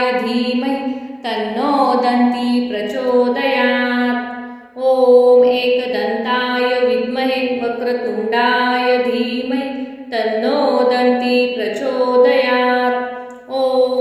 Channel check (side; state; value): both; identical; correlation 1.00